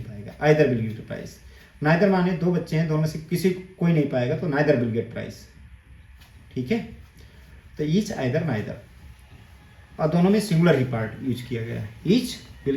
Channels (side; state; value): both; identical; correlation 1.00